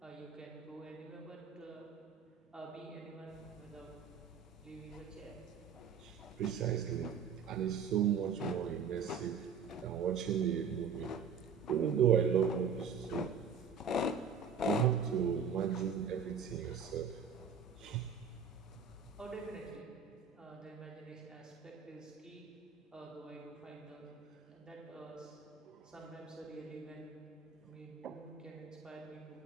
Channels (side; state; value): left; quieter; 6.2 dB